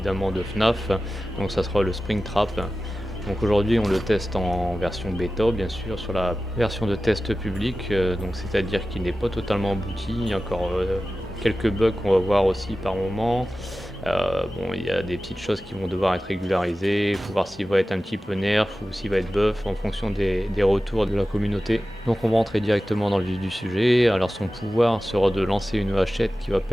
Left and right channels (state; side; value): normal; both; correlation 0.95